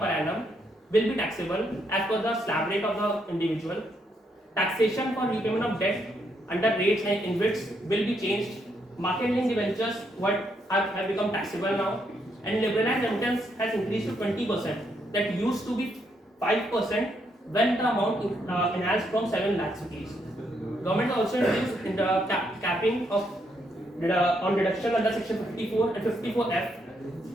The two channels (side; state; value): both; normal; correlation 0.76